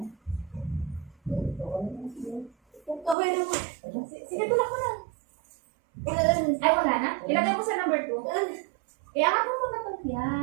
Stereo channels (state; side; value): drops out; left; at 3.2 s